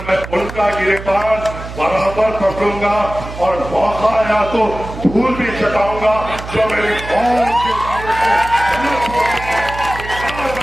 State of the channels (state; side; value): noise; right; hum, 11 dB below the sound